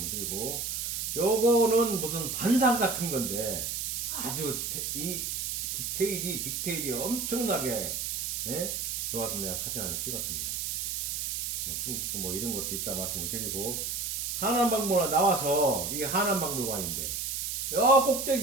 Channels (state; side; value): noise; right; hiss, 2 dB below the sound